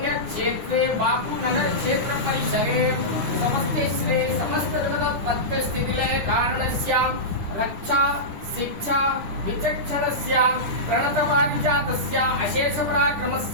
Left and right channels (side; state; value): left; late; 9.9 ms